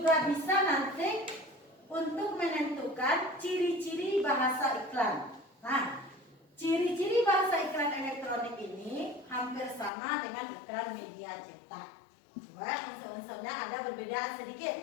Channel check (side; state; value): right; drops out; at 9.9 s